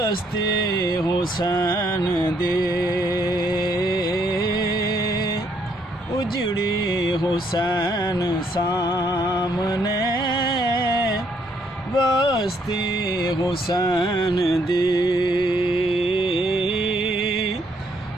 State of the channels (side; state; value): both; normal; correlation 0.70